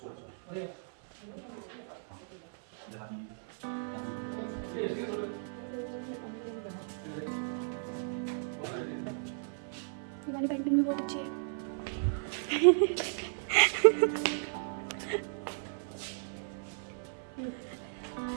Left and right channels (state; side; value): silent; left; 55 dB below the other